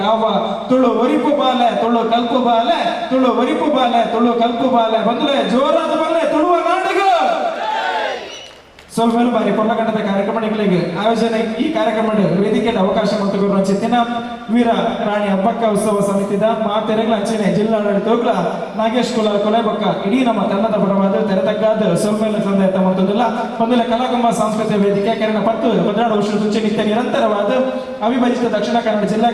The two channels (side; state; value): both; identical; correlation 1.00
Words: ತುಳು ಒರಿಪು ಬಾಲೆ ತುಳು ಕಲ್ಪು ಬಾಲೆ ತುಳು ಒರಿಪು ಬಾಲೆ ತುಳು ಕಲ್ಪು ಬಾಲೆ ಬಂದ್ರೆ ಜೋರಾದ ಬಲ್ಲೆ ತುಳುವ ನಾಟಕ ಸ್ವಲ್ಪ ಬಾರಿ ಕೊಲ್ಲಗಂಡದ ಕಾರ್ಯಕ್ರಮಗಳಿಗೆ ಆಯೋಜನೆ ಈ ಕಾರ್ಯಕ್ರಮ ವೇದಿಕೆಯ ಅವಕಾಶ ಮತ್ತು ಚಿತ್ತಿನ ವೀರ ರಾಣಿ ಹಬ್ಬಕ್ಕ ಉತ್ಸವ ಸಮಿತಿದ ಮಾತೆರೆಗಳ ಅಂಚನೆ ಜಿಲ್ಲಾಡಳಿತ ಹೋಗ್ಲ ನಾಗೇಶ್ ಕುಲಾಲ್ ಕೊಲೆಬಕ್ಕ ಇಡೀ ನಮ್ಮ ತಂಡದ ಪರವಾದ ತೆರೆತಕ್ಕಾದ ಸೊಲ್ಮೇಲೆ ತಂದೆ ತಮ್ಮದಲ್ಲ ಒಂದೆಲ್ಲ ಕಲಾಕುಂಭ ಸಾಂಸ್ಕೃತಿಕ ವೇದಿಕೆ ಕನ್ನಡ 10 ವರ್ಷ ಮುಂಚೆ ನಿತ್ಯ ನಿರಂತರವಾದ ಅವಿಭಜಿತ ದಕ್ಷಿಣ ಕನ್ನಡ ಜಿಲ್ಲಾ